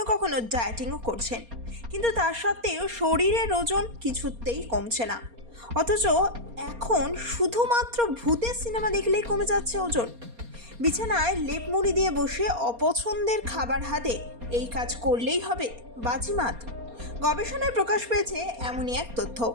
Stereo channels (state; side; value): late; left; 4.3 ms